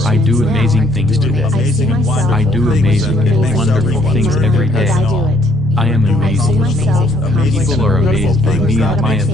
I do amazing things today. I do amazing and wonderful things every day. I am amazing. People are amazed by me and my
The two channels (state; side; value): normal; both; correlation 0.66